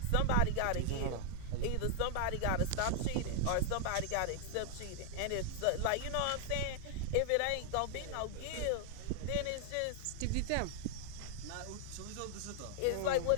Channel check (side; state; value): both; different; correlation -0.01